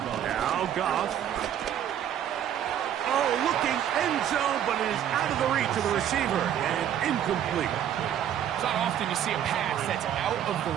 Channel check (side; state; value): left; quieter; 10.1 dB